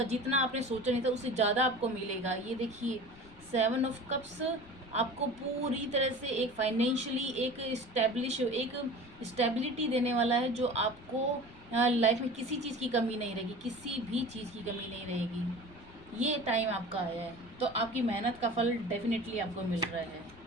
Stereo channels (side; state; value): left; noise; rumble, 22 dB below the sound